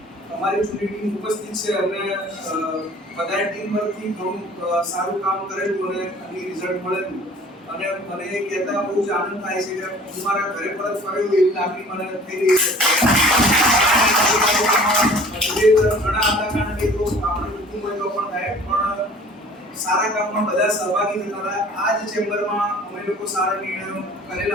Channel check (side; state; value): both; normal; correlation 0.48